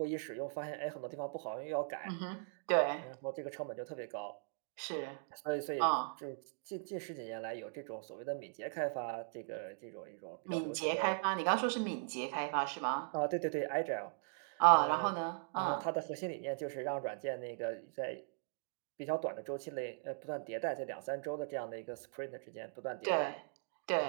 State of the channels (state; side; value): silent; left; digital silence